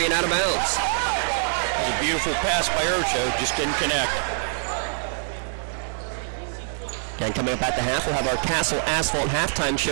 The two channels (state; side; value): silent; left; digital silence